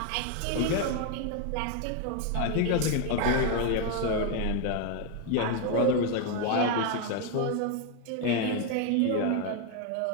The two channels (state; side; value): different; both; correlation 0.01